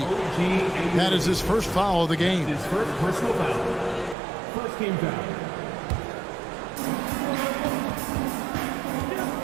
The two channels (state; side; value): drops out; left; at 4.2 s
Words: That is his first foul of the game. His first personal foul. First game foul.